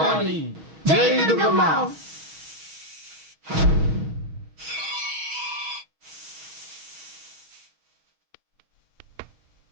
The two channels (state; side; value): late; left; 6.3 ms